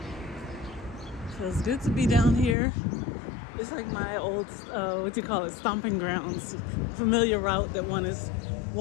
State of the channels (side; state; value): right; drops out; at 2.6 s